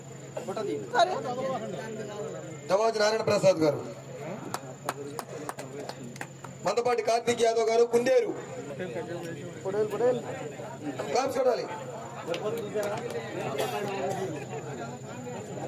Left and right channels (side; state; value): both; identical; correlation 1.00